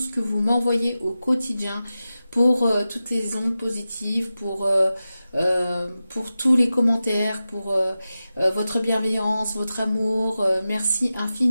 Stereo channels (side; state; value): both; inverted; correlation -0.93